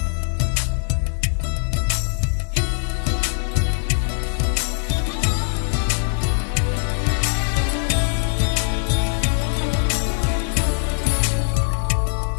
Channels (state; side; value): silent; right; 57 dB below the other